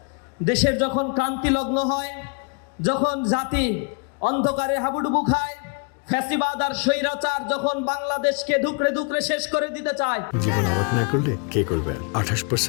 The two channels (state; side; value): quieter; right; 35.9 dB